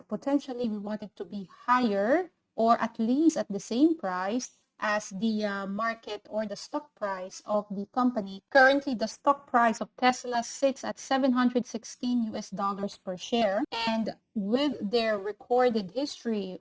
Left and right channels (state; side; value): identical; both; correlation 1.00